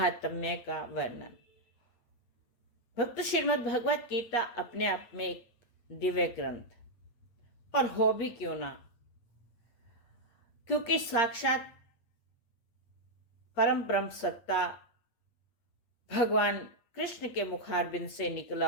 का वर्णन। भक्त, श्रीमद् भगवत गीता अपने आप में एक दिव्य ग्रंथ और हो भी क्यों ना, क्योंकि साक्षात परम ब्रह्म सत्ता भगवान कृष्ण के मुखारबिंद से निकला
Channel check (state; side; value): late; right; 8.6 ms